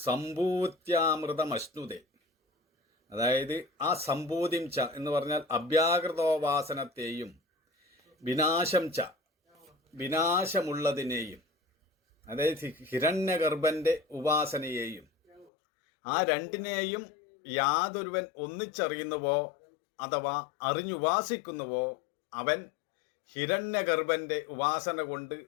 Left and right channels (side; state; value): right; drops out; at 15.5 s